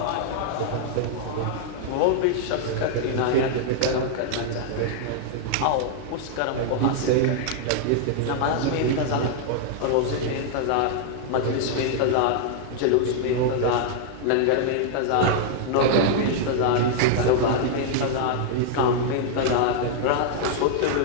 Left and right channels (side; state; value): both; different; correlation -0.01